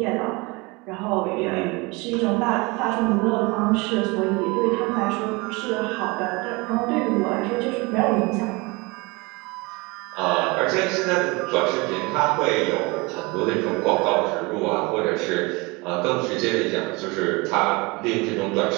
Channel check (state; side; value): quieter; left; 25.9 dB